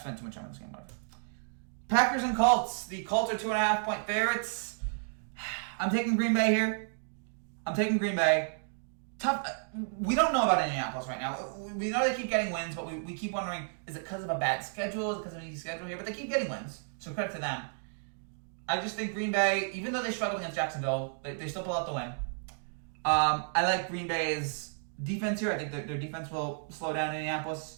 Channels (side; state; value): left; silent; digital silence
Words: too much time on this game. Whatever. Packers and Colts. The Colts are 2.5-point favorites. I'm taking Green Bay here. I'm taking Green Bay. Tough. We don't know about Indianapolis right now. We know they keep getting wins, but we keep wondering, is it because of a bad schedule? Is it because of an easy schedule here? But they keep getting wins, so credit to them. I just think Green Bay, even though they struggled against Jacksonville, they still pull out the win. I like Green Bay's defense here. I think their defense will slow down